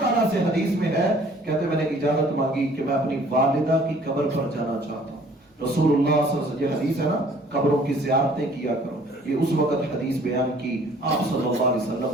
تعالیٰ سے حدیث میں ہے، کہتے میں نے اجازت مانگی کہ میں اپنی والدہ کی قبر پر جانا چاہتا ہوں۔ رسول اللہ صلی اللہ علیہ وسلم، یہ حدیث ہے نا، قبروں کی زیارتیں کیا کرو، یہ اس وقت حدیث بیان کی آپ صلی اللہ علیہ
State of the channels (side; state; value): both; normal; correlation 0.55